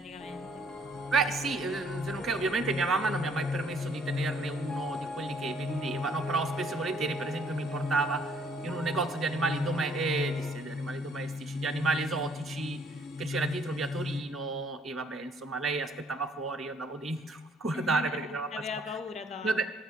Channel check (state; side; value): normal; both; correlation 0.63